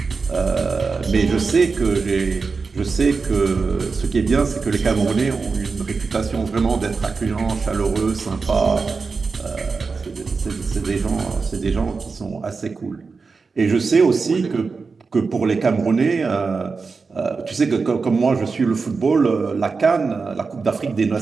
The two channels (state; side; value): quieter; left; 4.6 dB